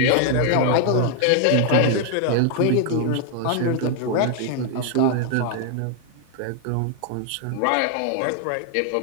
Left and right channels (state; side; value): different; both; correlation 0.00